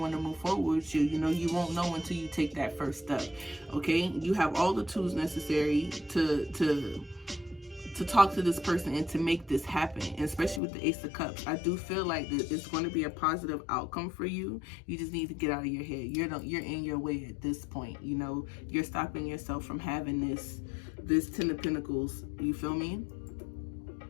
to move forward with you. You know, you won't know until you take that first step, okay? You have all the tools necessary to talk to this person and to make this happen, and especially with the Ace of Cups. I do feel like that it's going to be a positive outcome for you. You just need to get out of your head. You're in your way at this point. You know, you're stopping yourself from having this 10 of Pentacles. You feel me?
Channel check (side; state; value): right; drops out; at 10.6 s